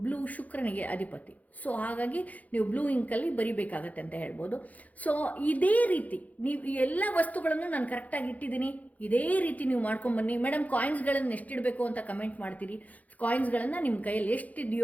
ಬ್ಲೂ ಶುಕ್ರನಿಗೆ ಅಧಿಪತಿ. ಸೊ ಹಾಗಾಗಿ ನೀವು ಬ್ಲೂ ಇಂಕಲ್ಲಿ ಬರಿಬೇಕಾಗತ್ತೆ ಅಂತ ಹೇಳ್ಬೋದು. ಸೊ ಇದೇ ರೀತಿ ನೀವು ಈ ಎಲ್ಲ ವಸ್ತುಗಳನ್ನು ನಾನು ಕರೆಕ್ಟಾಗಿ ಇಟ್ಟಿದ್ದೀನಿ, ಇದೇ ರೀತಿ ನೀವು ಮಾಡ್ಕೊಂಬನ್ನಿ. ಮೇಡಮ್ ಕಾಯಿನ್ಸ್ಗಳನ್ನು ಎಷ್ಟಿಡಬೇಕು ಅಂತ ಕಮೆಂಟ್ ಮಾಡ್ತೀರಿ. ಕಾಯಿನ್ಸ್ಗಳನ್ನು ನಿಮ್ಮ ಕೈಯಲ್ಲಿ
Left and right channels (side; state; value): right; late; 0.075 ms